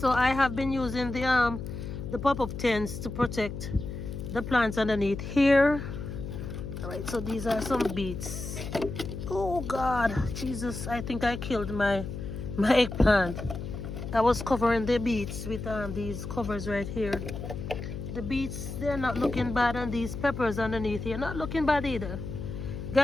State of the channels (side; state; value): left; noise; hum, 7 dB below the sound